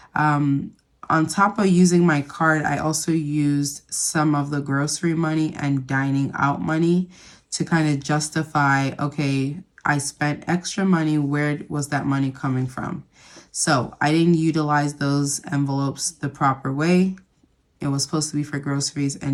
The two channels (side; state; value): both; identical; correlation 1.00